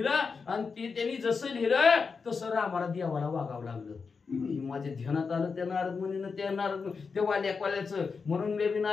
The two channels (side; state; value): right; quieter; 5.1 dB